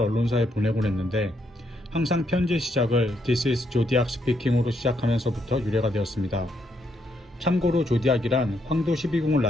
보내곤 했는데, 항상 편지의 시작을 This is Zodiac speaking으로 시작하면서부터 유래가 되었습니다. 참고로 조디악이란 황도 12궁을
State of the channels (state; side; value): normal; both; correlation 0.76